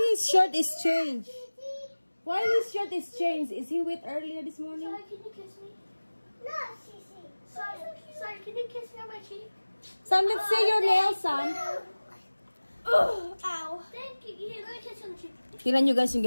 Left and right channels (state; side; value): inverted; both; correlation -1.00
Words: his shirt is changed? Why his shirt is changed? Is he wet earlier this morning? Sorry, can you kiss me? No, Sissy. Sorry, can you kiss me on my cheek? Sam, let's see your nails, Sam. Ow. Thank you. Here, let me kiss you on the cheek. Tingnan nyo guys